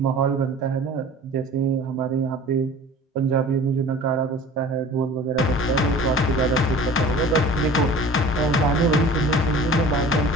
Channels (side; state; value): both; normal; correlation 0.42